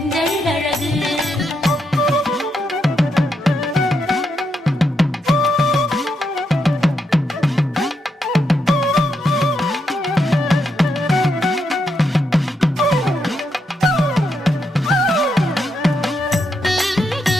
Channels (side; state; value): both; normal; correlation 0.81